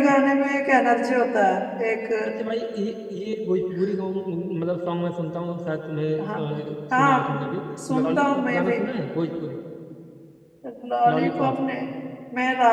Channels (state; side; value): identical; both; correlation 1.00